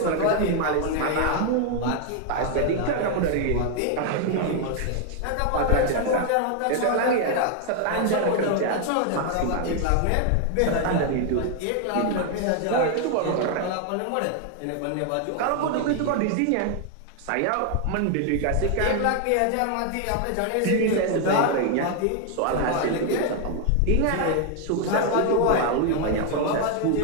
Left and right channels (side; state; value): both; different; correlation 0.00